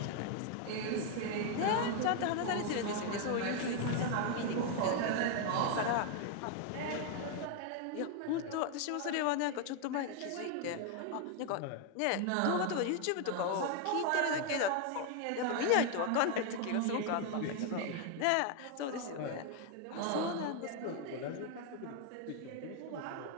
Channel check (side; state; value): both; different; correlation 0.00